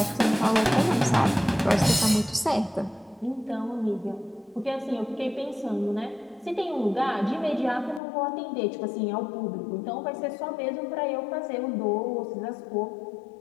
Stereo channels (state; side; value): drops out; right; at 8.0 s